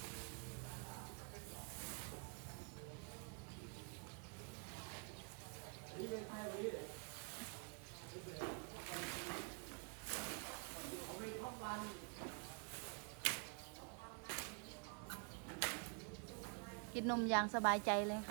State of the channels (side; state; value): left; quieter; 39.0 dB